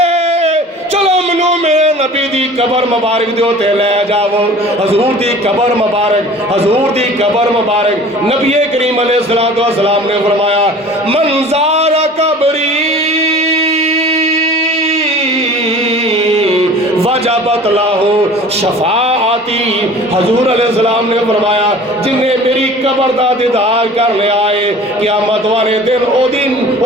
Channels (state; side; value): normal; both; correlation 0.44